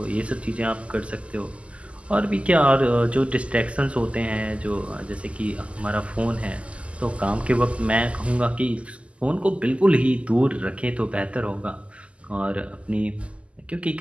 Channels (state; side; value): late; left; 0.059 ms